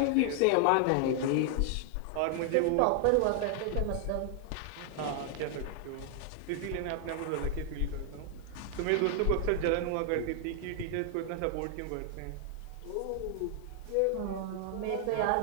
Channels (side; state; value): both; different; correlation 0.00